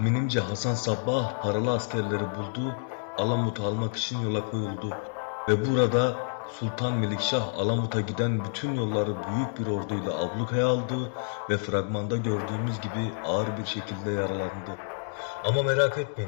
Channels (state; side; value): silent; right; digital silence